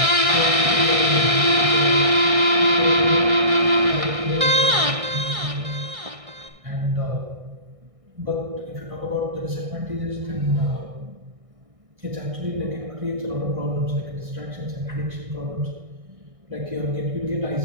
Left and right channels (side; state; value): left; late; 1.6 ms